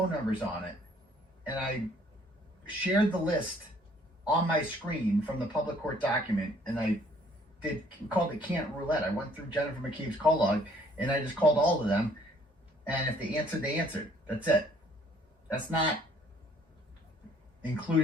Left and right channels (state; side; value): normal; both; correlation 0.60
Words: numbers on it, and I shared the list on my screen from the public court document, and I called it Can't Roulette. I went through Jennifer McCabe's call log, and I just called all of them, and if they answered, they answered. That's it. That's not